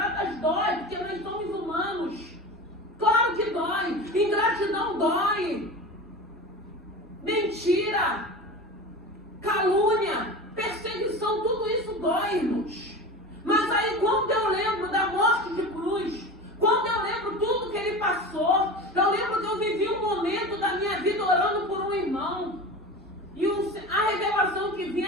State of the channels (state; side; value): normal; both; correlation 0.30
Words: dói, porque nós somos humanos. Claro que dói. Ingratidão dói. Mentira, calúnia, perseguição, tudo isso dói, irmãos. Mas aí quando eu lembro da morte de cruz, quando eu lembro tudo que ele passou, eu lembro que eu vivi um momento da minha vida orando por um irmão. E a revelação que